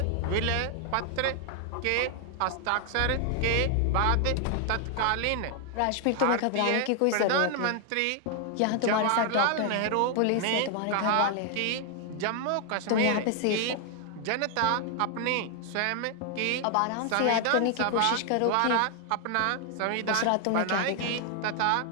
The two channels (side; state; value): both; different; correlation 0.00